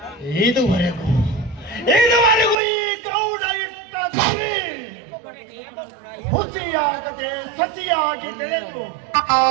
ಇದುವರೆಗೂ ಈ ಗೌಡ ಇಟ್ಟ ಸರಿ ಹುಸಿಯಾಗದೆ ಸಸಿಯಾಗಿ ಬೆಳೆದು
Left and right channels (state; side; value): drops out; left; at 2.6 s